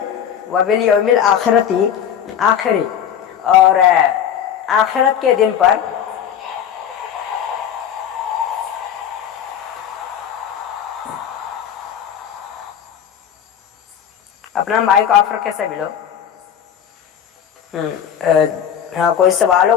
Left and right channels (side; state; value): right; quieter; 9.0 dB